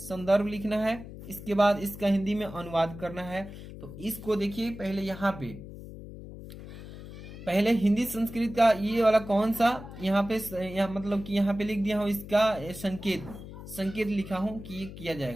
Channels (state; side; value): noise; left; hum, 13 dB below the sound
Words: लिखना है। इसके बाद इसका हिंदी में अनुवाद करना है। तो इसको देखिए पहले यहाँ पे, पहले हिंदी संस्कृत का ये वाला कौन सा, यहाँ पे मतलब कि यहाँ पे लिख दिया हूँ इसका संकेत लिखा हूं कि ये किया